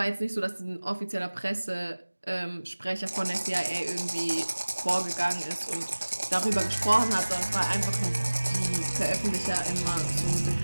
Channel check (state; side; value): inverted; both; correlation -1.00